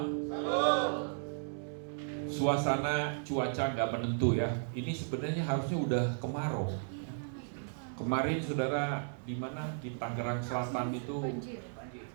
Suasana cuaca nggak menentu ya. Ini sebenarnya harusnya udah kemarau. Kemarin saudara di mana di Tangerang Selatan itu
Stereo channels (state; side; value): silent; left; 55 dB below the other